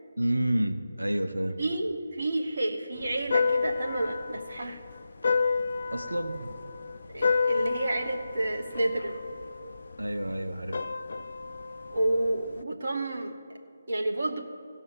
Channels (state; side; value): inverted; both; correlation -0.92